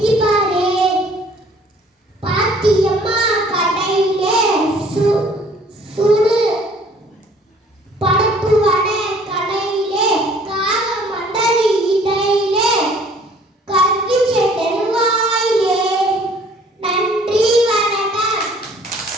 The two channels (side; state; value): both; normal; correlation 0.56